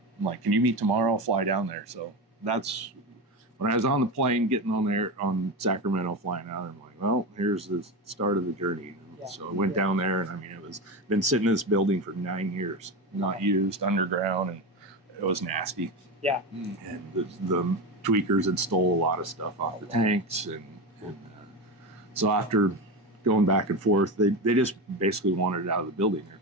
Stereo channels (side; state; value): both; normal; correlation 0.19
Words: I'm like, can you meet tomorrow? I'll fly down there. So that's when I was on the plane getting on there on Sacramento, flying out. I'm like, well, here's the start of the journey. Yeah. So I went down there, and I mean, it was been sitting in this building for 9 years, not used, underground, and it was nasty. Yeah. And the tweakers had stole a lot of stuff off the tanks, and so after going back and forth, they just basically wanted it out of the building. They're